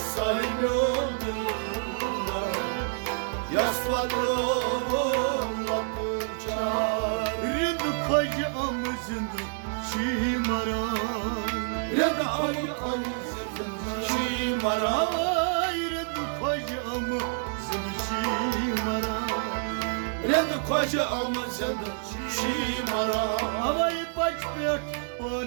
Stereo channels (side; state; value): left; silent; digital silence